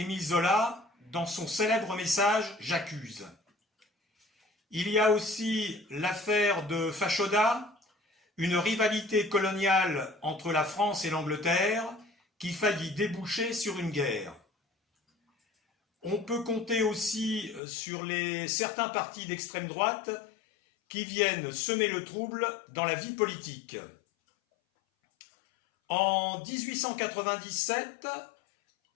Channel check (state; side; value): drops out; right; at 17.6 s